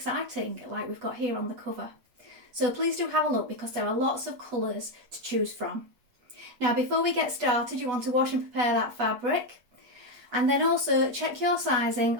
like we've got here on the cover. So please do have a look because there are lots of colours to choose from. Now before we get started, you want to wash and prepare that fabric, and then also check your sizing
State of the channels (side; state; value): left; late; 8.1 ms